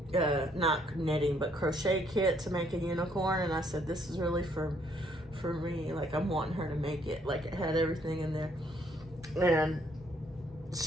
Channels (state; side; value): normal; both; correlation 0.68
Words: not knitting, but crochet kit to make a unicorn, and I said, this is really for me. Like, I'm wanting her to make it. Like, it had everything in there. And